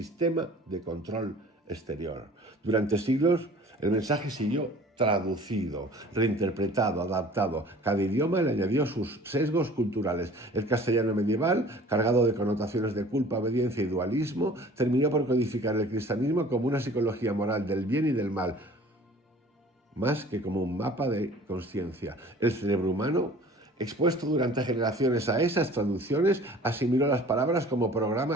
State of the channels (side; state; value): both; normal; correlation 0.47